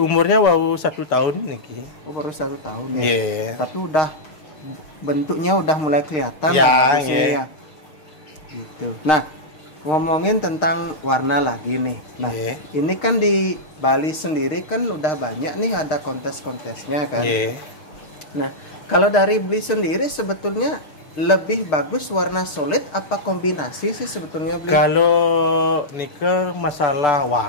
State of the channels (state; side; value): late; right; 6.5 ms